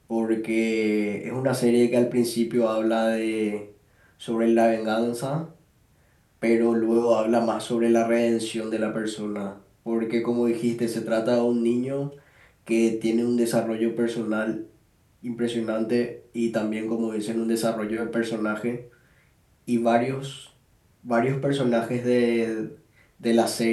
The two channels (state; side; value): identical; both; correlation 1.00